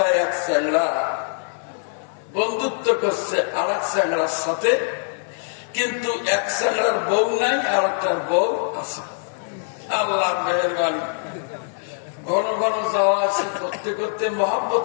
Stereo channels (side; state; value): right; silent; 59 dB below the other